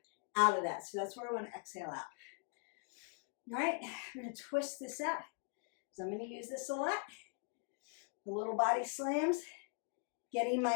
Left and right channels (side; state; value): right; quieter; 37.5 dB